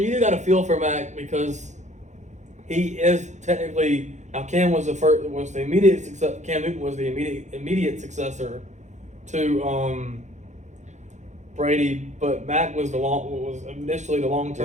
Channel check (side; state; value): left; late; 0.34 ms